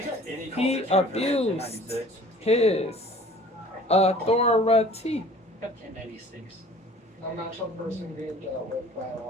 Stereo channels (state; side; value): normal; both; correlation 0.49